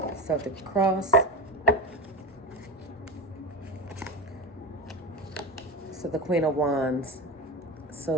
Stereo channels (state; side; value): normal; both; correlation 0.21